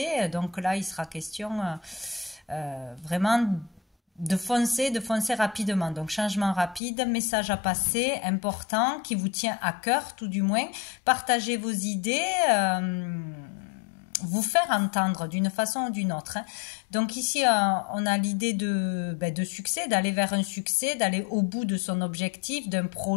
Donc là, il sera question vraiment de foncer rapidement. Donc changement rapide, message à passer, important, qui vous tient à cœur tout du moins. Partagez vos idées. Vous faire entendre d'une façon ou d'une autre. Donc ici, on a l'idée de succès, d'aller vers un succès, d'aller au bout de son objectif, d'un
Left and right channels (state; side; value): drops out; right; at 6.8 s